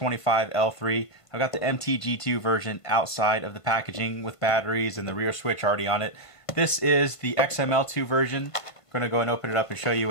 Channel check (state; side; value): late; right; 1.5 ms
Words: I've got the MTG2 version outside of the packaging with batteries and the rear switch already on it. This is the XML2 version. I'm going to go and open it up and show you